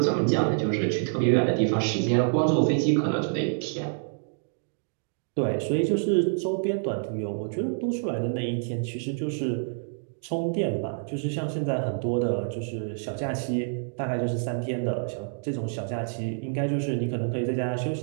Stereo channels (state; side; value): silent; left; digital silence